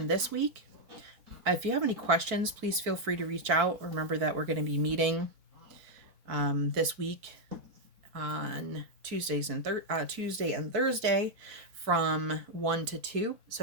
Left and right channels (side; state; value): left; late; 4.5 ms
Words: this week. If you have any questions, please feel free to reach out. Remember that we're going to be meeting this week on Tuesday and Thursday from 1 to 2.